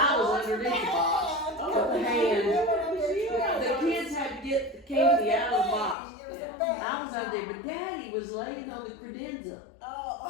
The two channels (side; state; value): right; drops out; at 6.0 s